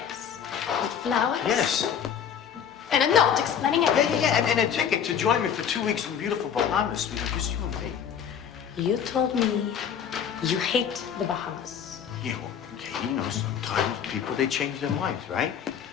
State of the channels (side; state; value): right; quieter; 8.2 dB